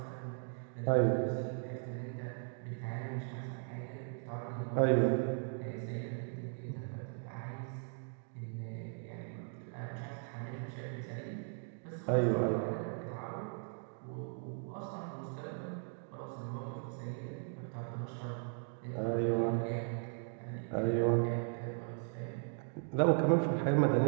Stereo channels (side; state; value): left; silent; 53 dB below the other